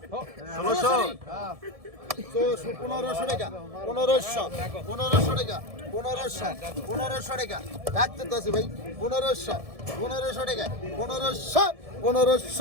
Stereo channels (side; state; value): left; late; 1.7 ms